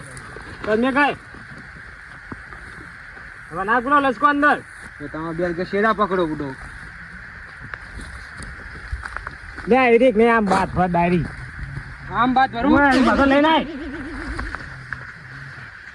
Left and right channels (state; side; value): identical; both; correlation 1.00